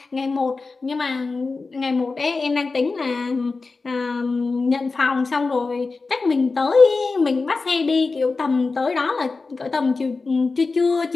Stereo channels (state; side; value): quieter; right; 4.0 dB